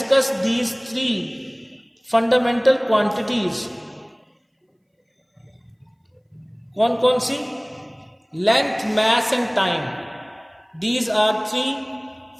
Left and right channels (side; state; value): both; identical; correlation 1.00